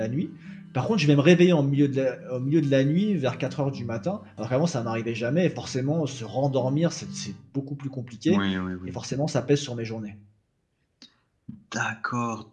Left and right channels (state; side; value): identical; both; correlation 1.00